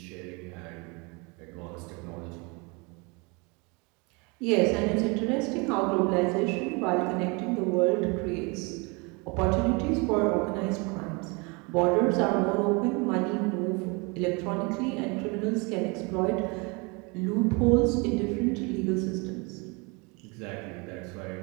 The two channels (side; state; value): left; quieter; 29.4 dB